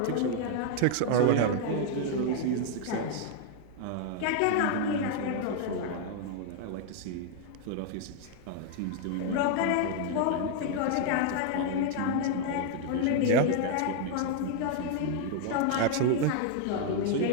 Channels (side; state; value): both; different; correlation 0.00